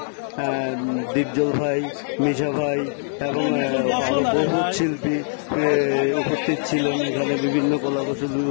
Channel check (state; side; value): silent; right; digital silence